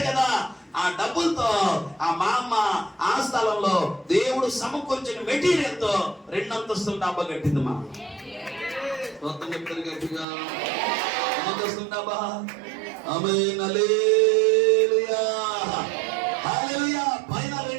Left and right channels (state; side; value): drops out; left; at 10.2 s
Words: కదా. ఆ డబ్బులతో ఆ మా అమ్మ ఆ స్థలంలో దేవుడు సమకూర్చిన మెటీరియల్ తో 2 అంతస్తుల డాబా కట్టింది. మా మొత్తం చెప్తారు గట్టిగా, అంతస్తుల డాబా. ఆమేన్, హల్లెలూయా, హల్లెలూయా. పైన